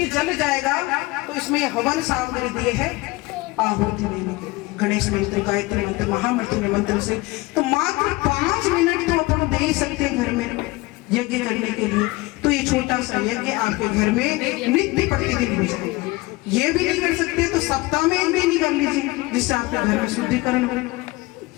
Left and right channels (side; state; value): right; quieter; 21.8 dB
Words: जल जाएगा तो इसमें ये हवन सामग्री दिए है आहुति देने के, गणेश मंत्र, गायत्री मंत्र, महामृत्युंजय मंत्र से। तो मात्र 5 मिनट तो अपन दे ही सकते हैं घर में यज्ञ करने के लिए। तो ये छोटा सा यज्ञ आपके घर में नित्य प्रतिदिन हो जाएगा। ये भी नहीं कर सकते तो सप्ताह में 1 दिन कर लीजिए, जिससे आपके घर में शुद्धिकरण हो।